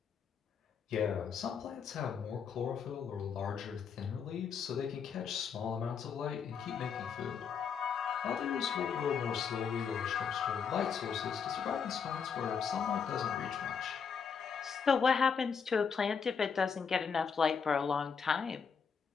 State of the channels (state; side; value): quieter; right; 6.4 dB